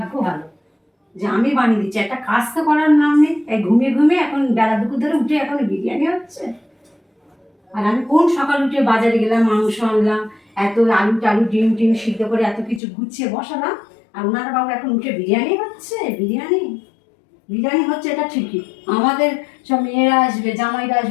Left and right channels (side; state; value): right; drops out; at 12.8 s